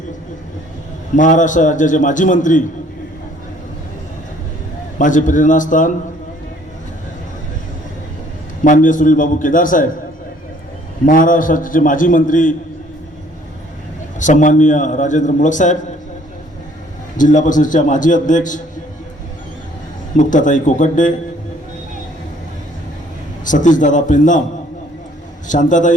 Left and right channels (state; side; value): normal; both; correlation 0.59